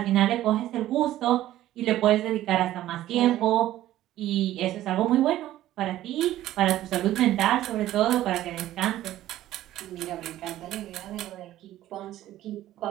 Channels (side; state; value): left; quieter; 14.0 dB